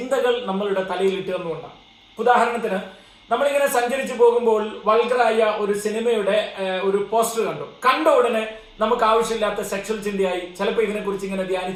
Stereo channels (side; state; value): both; identical; correlation 1.00